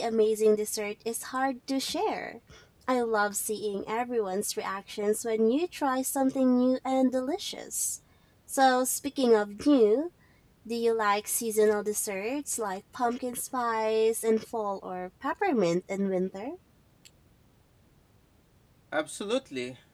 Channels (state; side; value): identical; both; correlation 1.00